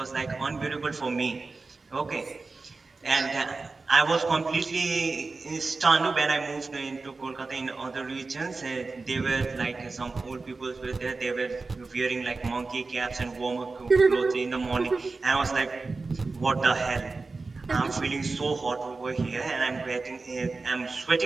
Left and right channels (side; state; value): left; quieter; 3.9 dB